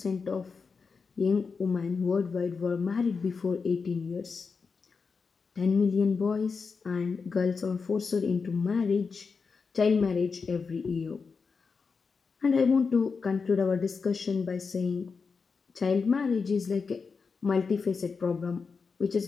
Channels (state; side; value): quieter; right; 5.1 dB